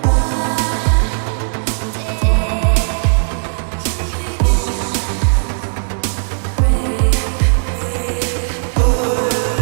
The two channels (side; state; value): left; silent; digital silence